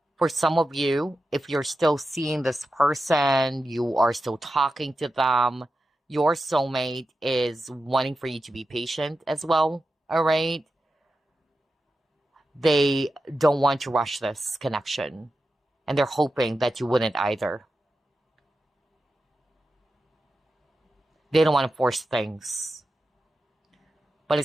For some of you, if you're still seeing this person, you are still talking to them, your soulmate is wanting for you to be patient as well, all right? They don't want to rush this connection, and they're hoping that you wouldn't either. They don't want to force things. But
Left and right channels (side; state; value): both; normal; correlation 0.91